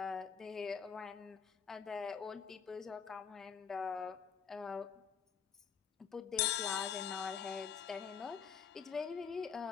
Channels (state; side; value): quieter; right; 6.9 dB